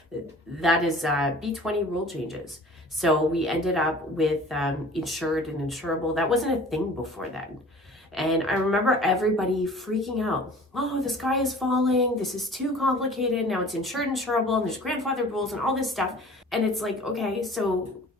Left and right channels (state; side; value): normal; both; correlation 0.46